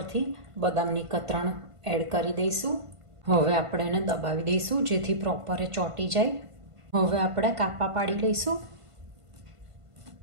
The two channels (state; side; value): late; left; 1.5 ms